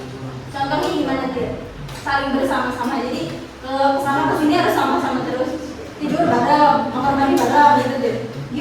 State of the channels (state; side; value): identical; both; correlation 1.00